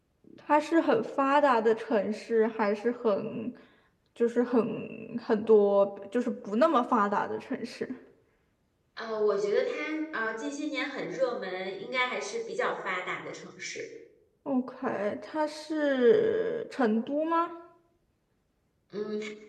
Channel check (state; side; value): identical; both; correlation 1.00